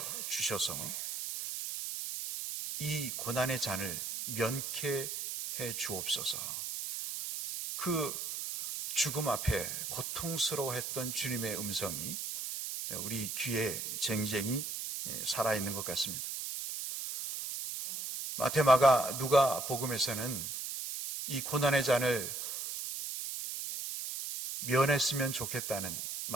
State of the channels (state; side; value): noise; right; hiss, 5 dB below the sound